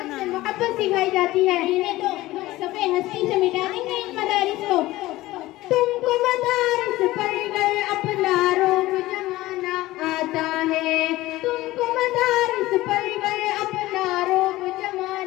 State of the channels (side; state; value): right; quieter; 17.6 dB